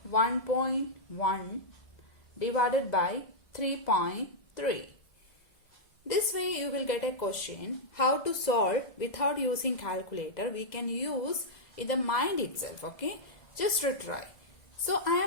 1.1 divided by 3.3. This way you will get a question how to solve without using calculator. We can use in the mind itself, okay, just to try. So I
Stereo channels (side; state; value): right; late; 2.0 ms